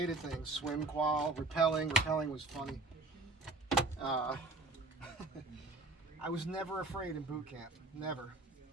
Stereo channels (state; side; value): quieter; left; 3.3 dB